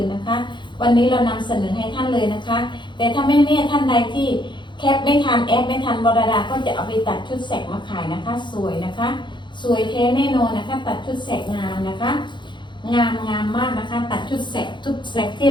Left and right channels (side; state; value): right; late; 0.23 ms